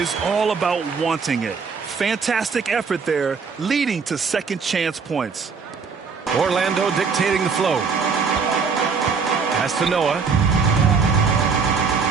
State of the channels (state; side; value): quieter; left; 5.4 dB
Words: all about wanting it. Fantastic effort there, leading to second chance points. Orlando dictating the flow. Pass to Noah.